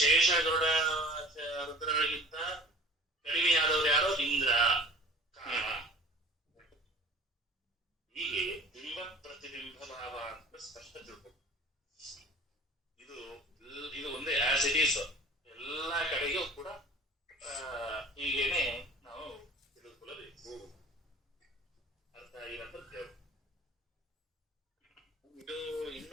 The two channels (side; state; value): both; normal; correlation 0.44